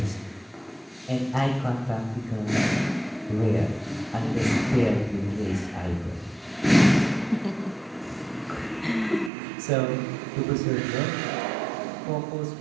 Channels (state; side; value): drops out; left; at 9.3 s